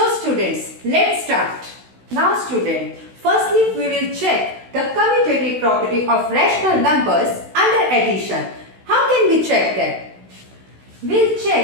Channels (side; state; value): left; late; 16 ms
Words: students, let's start. Now student, firstly we will check the commutative property of rational numbers under addition. How can we check that? We'll